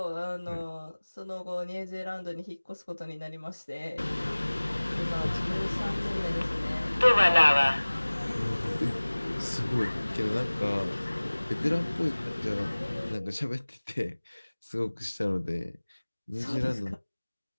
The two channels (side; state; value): both; inverted; correlation -1.00